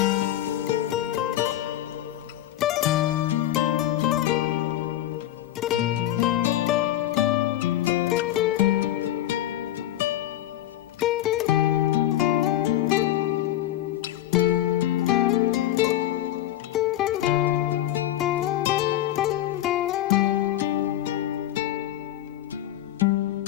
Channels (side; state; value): right; quieter; 13.3 dB